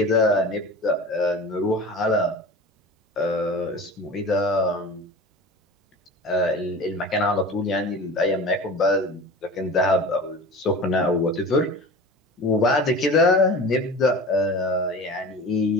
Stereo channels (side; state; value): both; normal; correlation 0.35